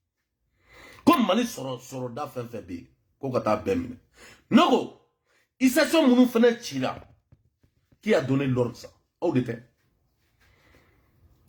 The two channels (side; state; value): both; identical; correlation 1.00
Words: Comme mani soro da fenfebe, ko kata bemine. Nogo, il s'est son mounou fene tira. Qui a donné l'ordre ça? Où était?